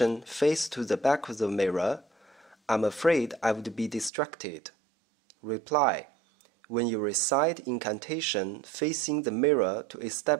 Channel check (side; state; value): left; drops out; at 4.1 s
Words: face to the back of the mirror, I'm afraid I would be distracted. Reply. When you recite incantation facing the mirror to